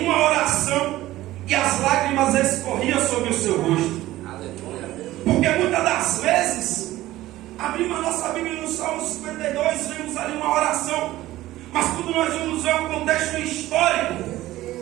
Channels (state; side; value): quieter; left; 16.0 dB